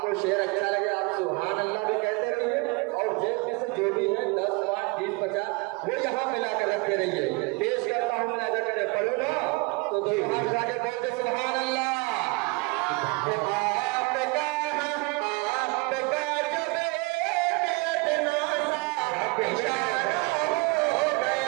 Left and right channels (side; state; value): left; quieter; 28.2 dB